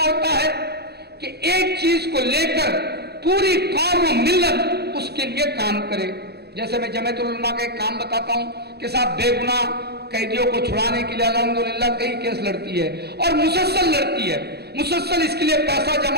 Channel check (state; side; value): late; left; 0.47 ms